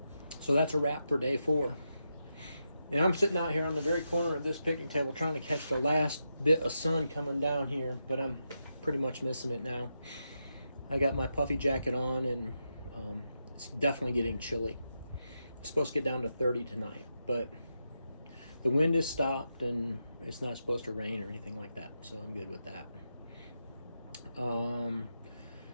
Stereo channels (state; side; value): inverted; both; correlation -0.85